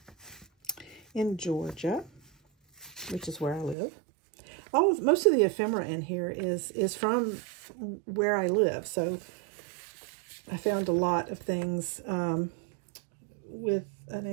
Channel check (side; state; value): left; drops out; at 3.8 s